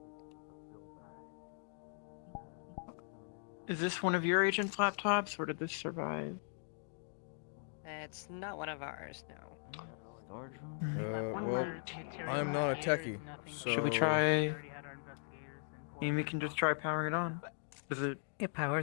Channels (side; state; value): right; silent; digital silence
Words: Is this one of your agent's laptops, or did this survive? It's not one of ours, no. Storage room. Well, I'm not a techie, so... Should we try? I mean, we can just try powering it on. Does it? it